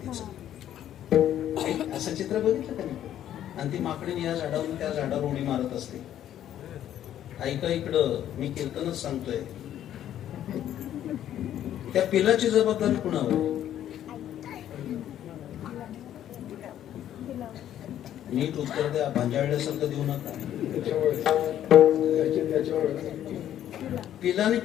असं चित्र बघितलं का नाही? आणि ती माकडीने या झाडावरून त्या झाडावर उडी मारत असते. ऐका इकडं, मी कीर्तनच सांगतोय. त्या पिलाची जबाबदारी कुणावर? नीट उत्तर द्या, भांजाळल्यासारखं देऊ नका. पिलाने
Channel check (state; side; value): quieter; right; 11.2 dB